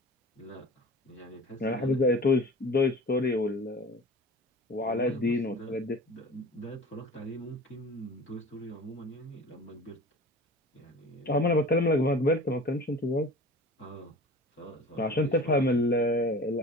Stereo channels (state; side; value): normal; both; correlation 0.39